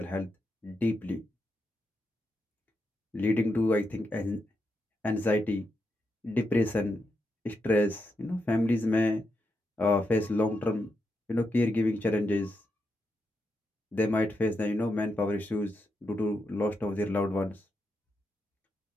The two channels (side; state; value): both; normal; correlation 0.84